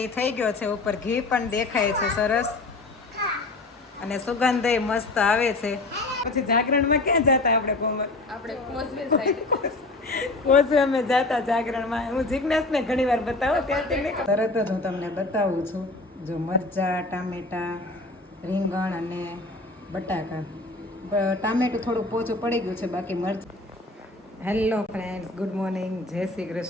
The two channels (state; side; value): quieter; right; 3.1 dB